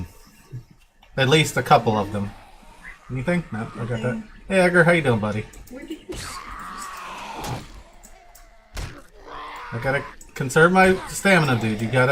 At least a couple of them. Anything? No, I got that. Hey Edgar, how you doing, buddy? Where did you... I gotta conserve my stamina, dude. You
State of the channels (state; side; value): identical; both; correlation 1.00